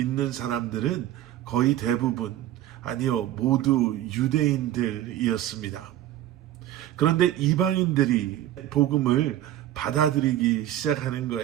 사람들은 거의 대부분, 아니요, 모두 유대인들이었습니다. 그런데 이방인들이 복음을 받아들이기 시작하는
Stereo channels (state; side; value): quieter; left; 12.9 dB